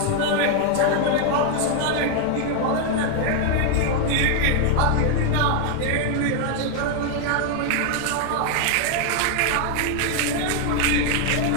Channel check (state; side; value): different; both; correlation 0.00